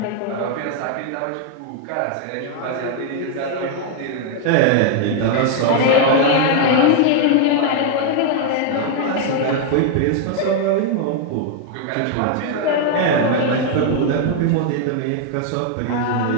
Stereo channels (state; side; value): different; both; correlation 0.00